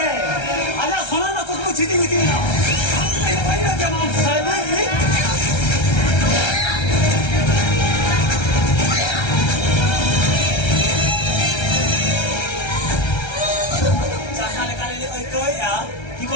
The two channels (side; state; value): right; late; 1.3 ms